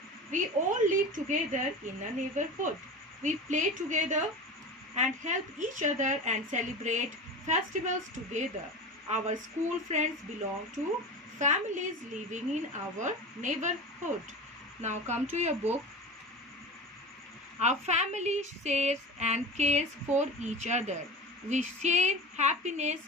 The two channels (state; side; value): normal; both; correlation 0.30